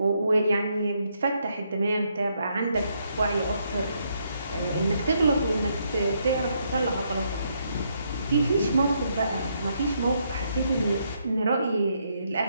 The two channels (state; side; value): inverted; both; correlation -0.75